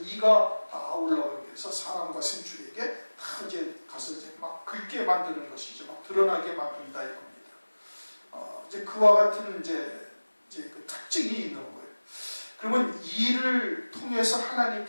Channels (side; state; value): both; inverted; correlation -1.00